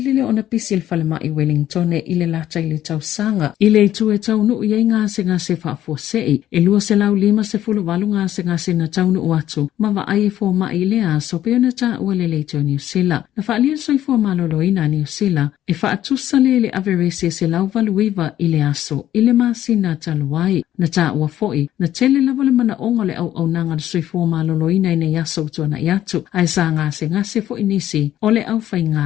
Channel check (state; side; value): quieter; right; 12.3 dB